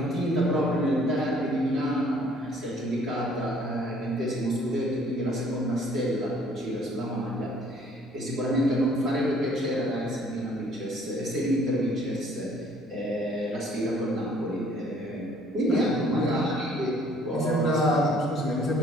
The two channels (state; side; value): normal; both; correlation 0.59